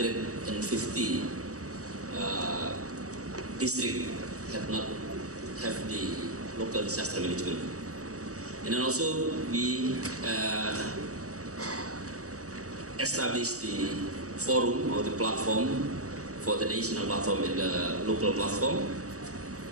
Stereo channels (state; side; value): late; left; 0.66 ms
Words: districts have not have the local disaster management. And then also we established the forum or the platform for the national platform and the local platform.